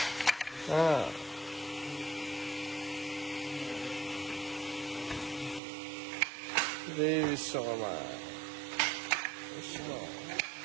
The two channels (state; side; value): drops out; left; at 5.6 s